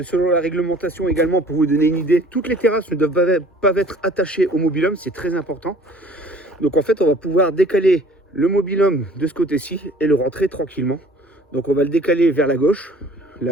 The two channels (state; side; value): normal; both; correlation 0.51